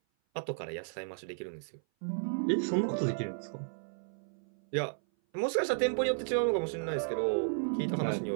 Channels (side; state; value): left; silent; 55 dB below the other